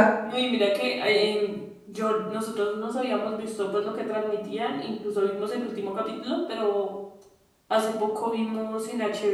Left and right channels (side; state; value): both; identical; correlation 1.00